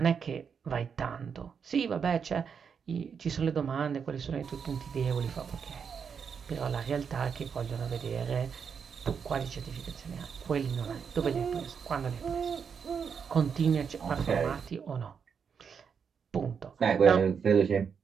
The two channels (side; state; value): left; quieter; 6.6 dB